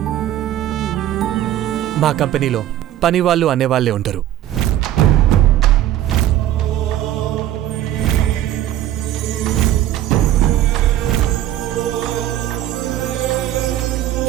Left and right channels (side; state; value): left; quieter; 12.8 dB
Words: మా కంపెనీలో పనివాళ్ళు అనేవాళ్లే ఉండరు.